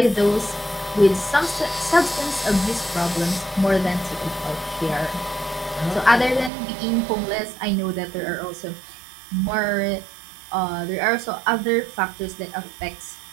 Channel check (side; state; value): left; drops out; at 6.5 s